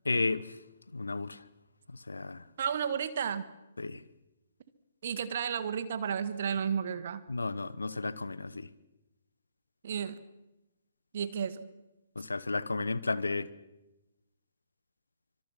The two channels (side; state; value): both; inverted; correlation -0.81